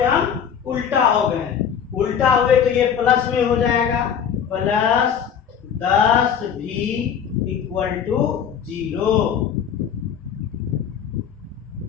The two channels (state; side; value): quieter; right; 7.9 dB